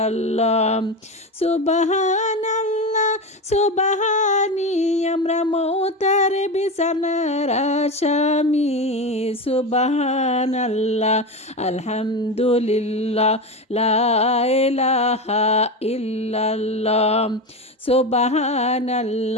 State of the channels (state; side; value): normal; both; correlation 0.20